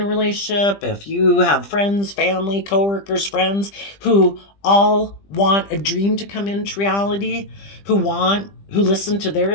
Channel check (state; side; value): late; right; 20 ms